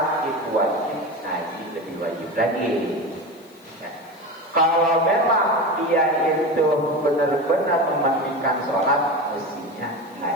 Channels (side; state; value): left; noise; hiss, 28 dB below the sound